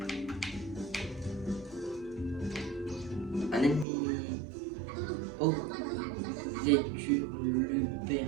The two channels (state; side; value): drops out; left; at 3.9 s